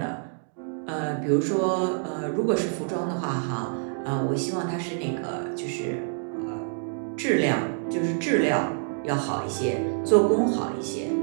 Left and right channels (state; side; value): silent; left; digital silence